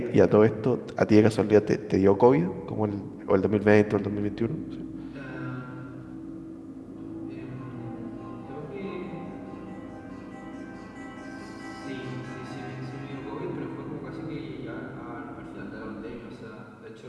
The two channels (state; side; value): identical; both; correlation 1.00